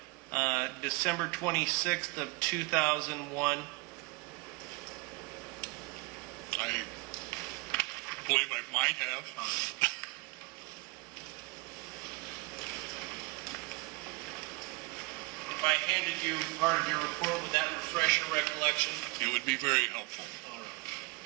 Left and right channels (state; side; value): quieter; left; 25.5 dB